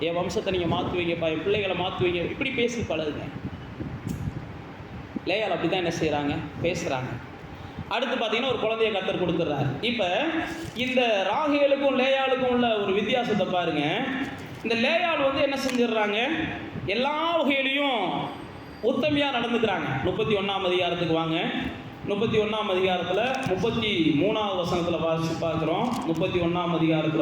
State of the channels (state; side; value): identical; both; correlation 1.00